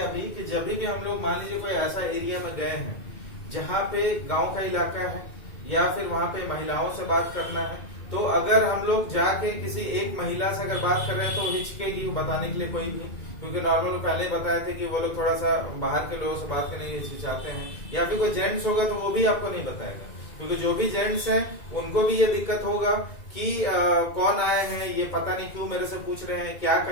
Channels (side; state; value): right; late; 2.2 ms